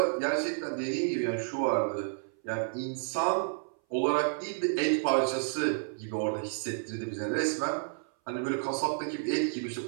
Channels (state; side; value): silent; left; 57 dB below the other